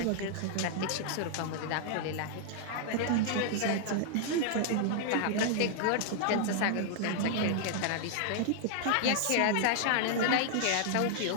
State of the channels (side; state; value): both; different; correlation -0.01